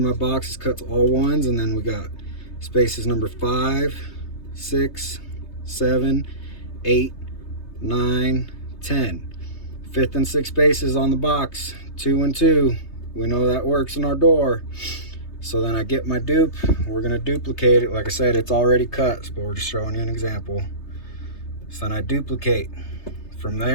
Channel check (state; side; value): late; right; 3.3 ms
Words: my box is cuts all 1s, and then we got spaces number 5, 6, 7, 8, 9, 10. 5th and 6th spaces on the box, 2 and 2. We know that works in our door. So then I get my dupe. We're gonna duplicate it. Like I said, it's already cut, but we're just showing you an example. So then I duplicate from